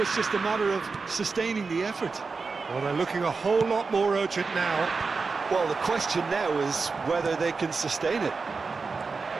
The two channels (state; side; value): quieter; left; 4.5 dB